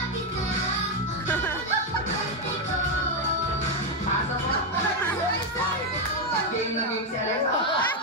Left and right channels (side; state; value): both; normal; correlation 0.04